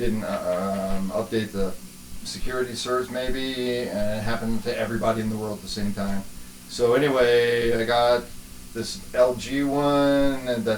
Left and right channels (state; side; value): identical; both; correlation 1.00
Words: update the security certs maybe, and it happened to everybody in the world at the same time. So anyway, I got this LG one